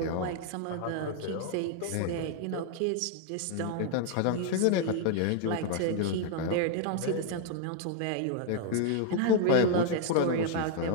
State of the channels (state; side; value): different; both; correlation 0.00